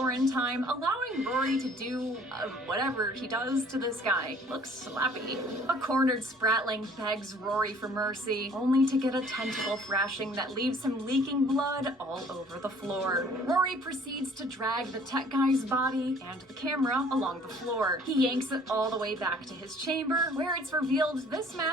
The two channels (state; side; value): normal; both; correlation 0.55